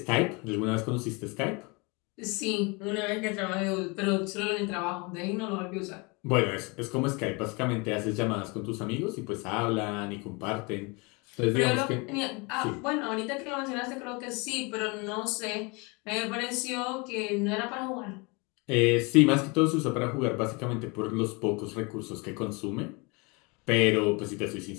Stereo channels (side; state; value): right; quieter; 28.7 dB